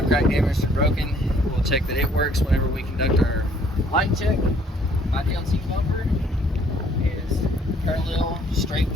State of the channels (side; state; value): both; normal; correlation 0.61